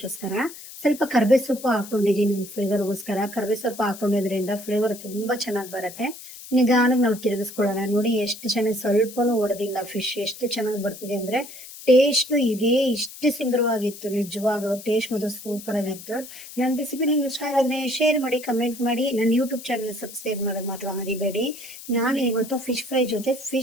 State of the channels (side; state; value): left; noise; hiss, 15 dB below the sound